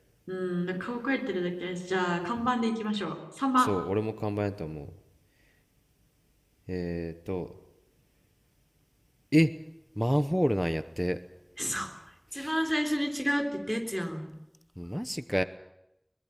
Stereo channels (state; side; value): identical; both; correlation 1.00